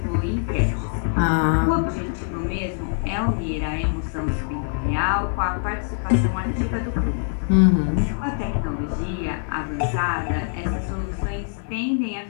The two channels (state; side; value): silent; right; 63 dB below the other